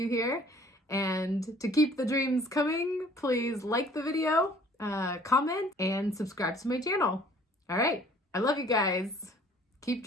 here. And to keep the dreams coming, please like the video, comment, and subscribe to my channel. All right. I love you guys. Keep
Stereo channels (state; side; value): normal; both; correlation 0.55